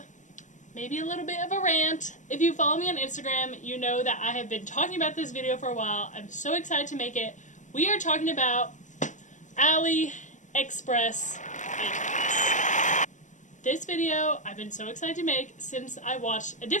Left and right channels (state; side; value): late; right; 0.36 ms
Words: maybe a little bit of a rant. If you follow me on Instagram, you know that I have been talking about this video for a while. I'm so excited to make it. We are talking about AliExpress items. This video I've been so excited to make since I watched a